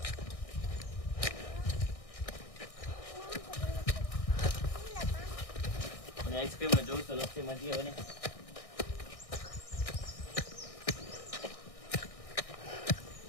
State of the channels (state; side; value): late; right; 1.6 ms